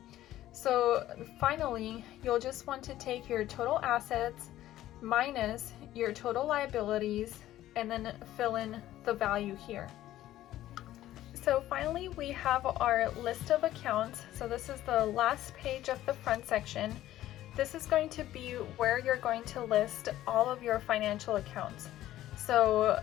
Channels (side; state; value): right; quieter; 13.9 dB